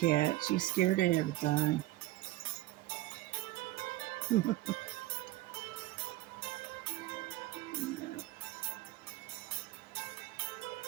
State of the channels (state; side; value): quieter; left; 17.1 dB